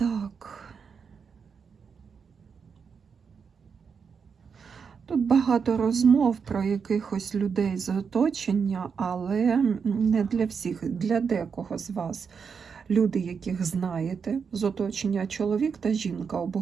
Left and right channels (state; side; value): quieter; left; 6.1 dB